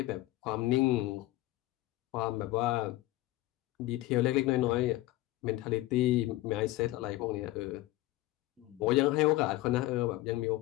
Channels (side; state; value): right; quieter; 17.5 dB